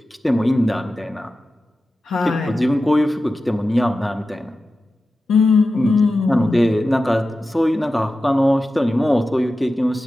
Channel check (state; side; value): normal; both; correlation 0.93